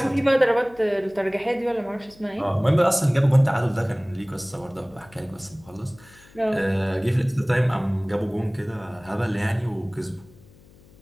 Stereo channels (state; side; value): noise; left; hum, 26 dB below the sound